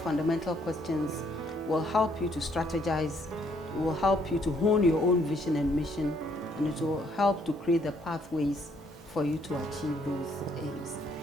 questions will help you to strategize, will help you to hone your own vision and mission, and it will help to create the pathways for you to achieve those aims.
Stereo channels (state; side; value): normal; both; correlation 0.68